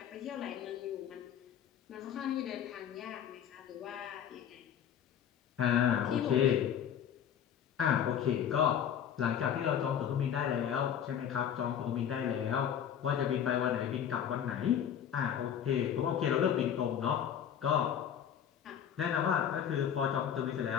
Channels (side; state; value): right; quieter; 9.0 dB